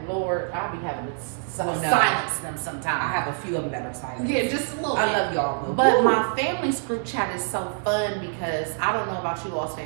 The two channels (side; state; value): left; silent; 59 dB below the other